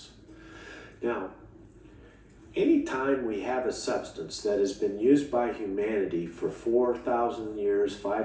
Now, anytime we have a substance that has been used by humanity for 4,000 years,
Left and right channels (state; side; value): identical; both; correlation 1.00